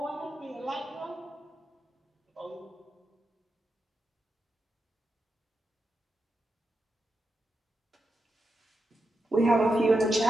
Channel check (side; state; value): both; normal; correlation 0.87